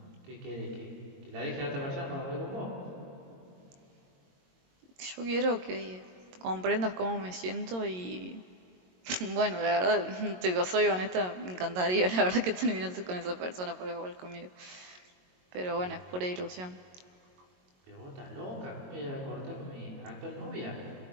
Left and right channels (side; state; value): left; late; 22 ms